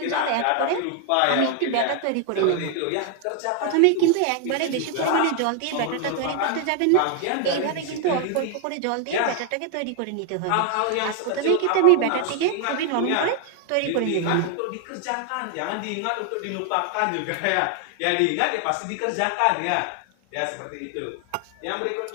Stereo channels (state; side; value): different; both; correlation 0.00